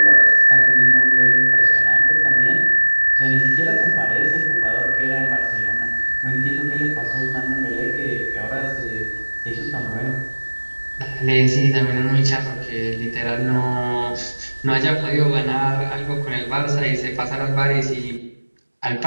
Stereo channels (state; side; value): inverted; both; correlation -1.00